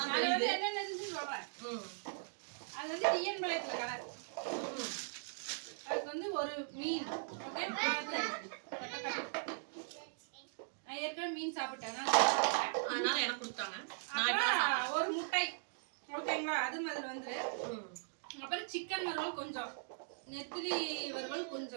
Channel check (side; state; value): left; silent; digital silence